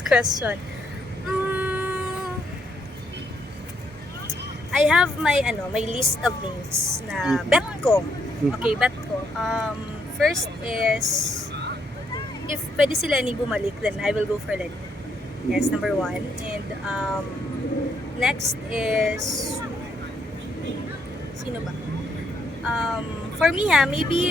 question. I have my list of names na bet ko. Okay, bet ko. First is if pwede si Lenny bumalik, then I will go for Lenny. Yes, number one. And next is sino ba? For me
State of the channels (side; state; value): both; normal; correlation 0.74